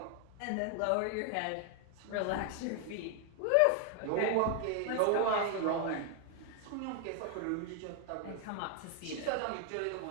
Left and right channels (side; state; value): both; different; correlation 0.00